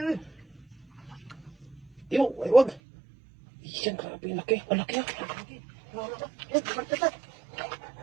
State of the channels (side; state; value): left; drops out; at 2.8 s